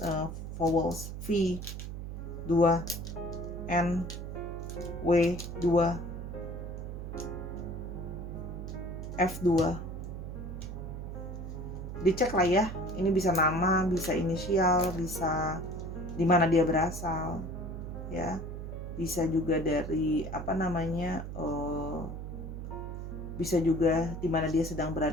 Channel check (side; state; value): right; noise; hum, 7 dB below the sound